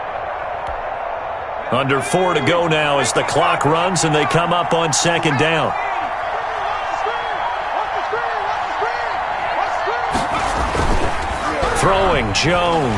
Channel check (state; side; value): identical; both; correlation 1.00